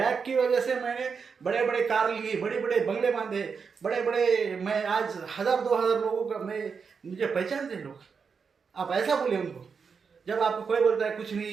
की वजह से मैंने बड़े बड़े कार लिए, बड़े बड़े बंगले बांधे, बड़े बड़े, मैं आज 1000-2000 लोगों का मुझे पहचानते हैं लोग। आप ऐसा बोले उनको। जब आपको कोई बोलता है कुछ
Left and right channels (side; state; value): left; quieter; 5.7 dB